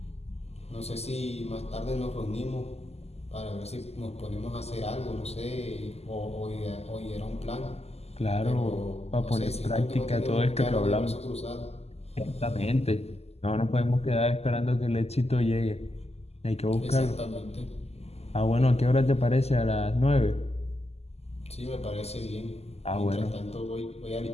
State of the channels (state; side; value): late; right; 0.30 ms